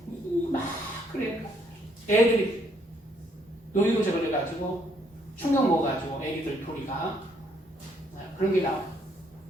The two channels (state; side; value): normal; both; correlation 0.69